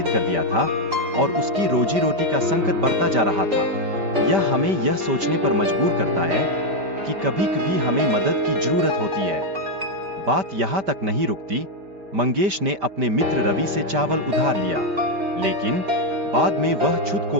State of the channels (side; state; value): left; late; 5.1 ms